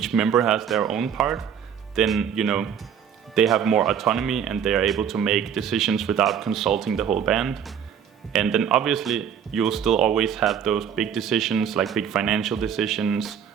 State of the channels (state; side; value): quieter; left; 8.2 dB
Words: member has their own part, then they have more autonomy and they are able to make decisions without consulting the whole band. And then obviously you'll still always have those big decisions, like big financial decisions